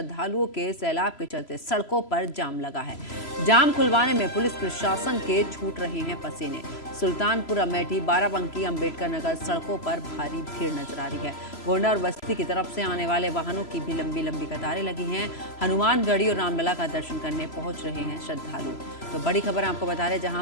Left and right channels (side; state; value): right; late; 3.0 ms